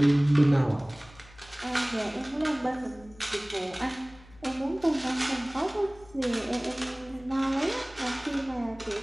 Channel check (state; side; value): noise; left; hum, 24 dB below the sound